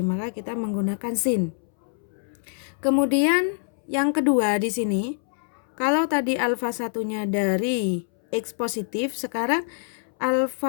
maka kita menggunakan sin. Kemudian yang kedua di sini, kalau tadi alfa satunya dari X positif, sekarang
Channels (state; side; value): silent; right; 62 dB below the other